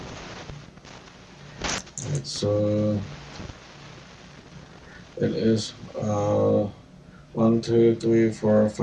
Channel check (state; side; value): identical; both; correlation 1.00